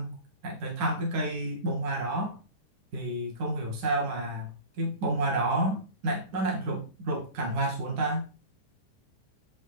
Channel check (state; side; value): late; left; 10 ms